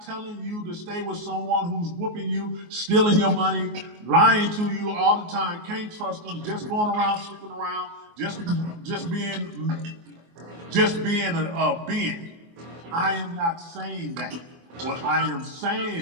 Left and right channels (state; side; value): late; left; 24 ms